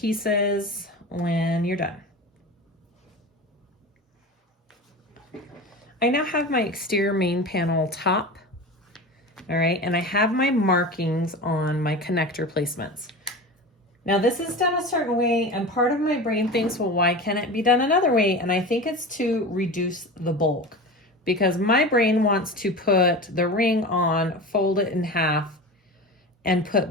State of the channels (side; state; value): both; normal; correlation 0.30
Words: when you're done. I now have my exterior main panel top, all right, and I have my markings on my connector placements. Now this is done a certain way, and part of my brain thinks, well, why can't it be done another way? And I think it's to reduce the bulk, because my brain wants to put the ring on, fold it in half, and